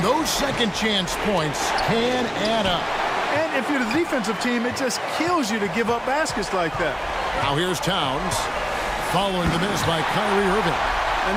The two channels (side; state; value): both; identical; correlation 1.00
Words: those second chance points can add up. And if you're the defensive team, it just kills you to give up baskets like that. Now here's Towns, following the miss by Kyrie Irving. And